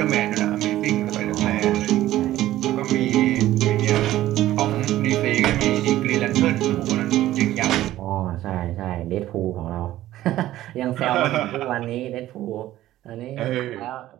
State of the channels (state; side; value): quieter; left; 14.5 dB